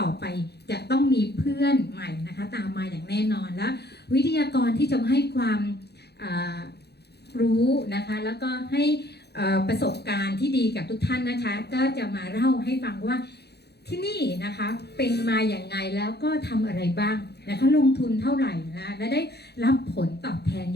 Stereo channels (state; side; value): late; right; 0.48 ms